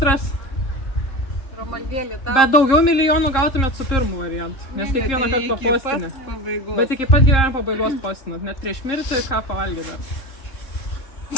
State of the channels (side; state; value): right; late; 3.7 ms